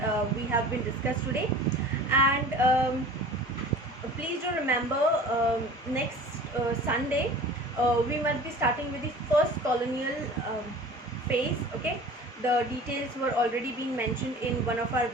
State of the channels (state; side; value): normal; both; correlation 0.41